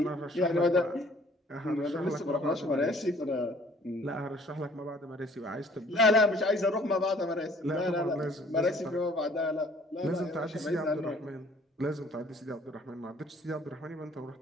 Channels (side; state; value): both; normal; correlation 0.56